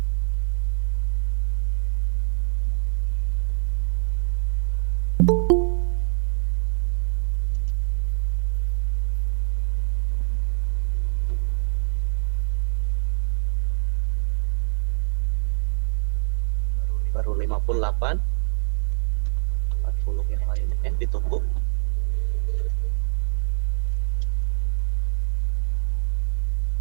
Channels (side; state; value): left; silent; 59 dB below the other